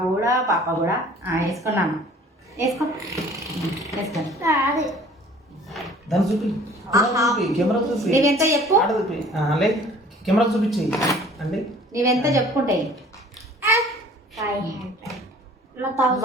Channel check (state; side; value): normal; both; correlation 0.50